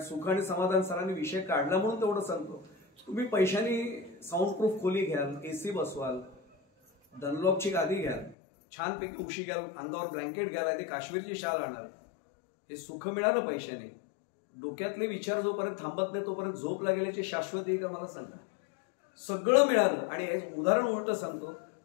सुख आणि समाधान सरांनी विषय काढला म्हणून तेवढं सांगतो. तुम्ही पैशानी साऊंडप्रूफ खोली घ्याल, AC बसवाल, डनलॉपची गादी घ्याल, छानपैकी उशी घ्याल, अंगावर ब्लँकेट घ्याल, ती काश्मीरची शाल आणाल, हे सुख मिळालं पैशाने, डोक्यातले विचार जोपर्यंत थांबत नाही तोपर्यंत झोप लागेल्याची शाश्वती आहे का मला सांगा. सगळं मिळालं. आणि एक उदाहरण उलट सांगतो,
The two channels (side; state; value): right; drops out; at 8.3 s